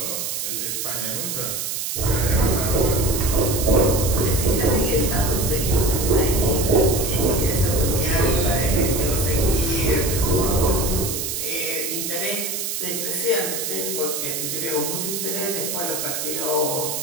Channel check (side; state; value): right; noise; hiss, 3 dB below the sound